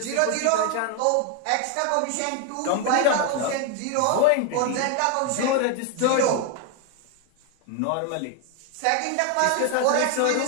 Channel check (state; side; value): different; both; correlation 0.01